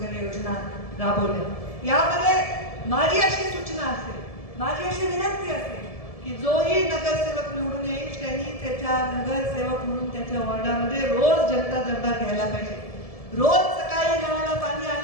योजना राबवल्या. यामध्ये माझी अशी सूचना असेल, माझी अशी विनंती असेल की जोही नगरसेवक निवडून येईल त्यांनी त्याच्या नगरसेवक म्हणून त्याच्या वॉर्डामध्ये रोज जनता दरबार घ्यायला पाहिजे. रोज सकाळी नळाला पाणी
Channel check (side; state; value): right; late; 1.7 ms